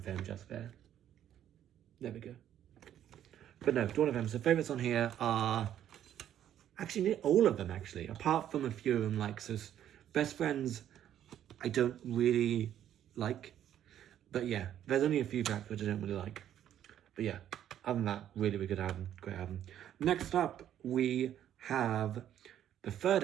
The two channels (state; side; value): quieter; left; 10.8 dB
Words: just there. There we go. But no, Dawn FM. So favourites on here are actually all of them, actually, apart from a few of them. Like, so Best Friends, I don't really like. But yeah, there's only a few tracks which I don't really like. But yeah, other than that, really, really good album, great album. Next up, we have the third